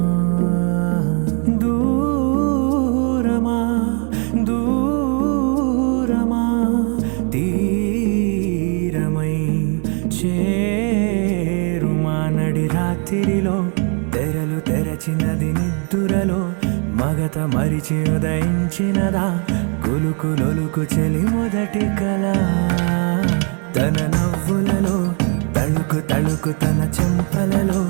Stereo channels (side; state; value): left; quieter; 38.7 dB